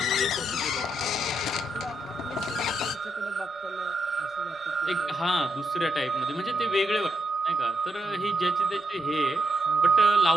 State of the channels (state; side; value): normal; both; correlation 0.81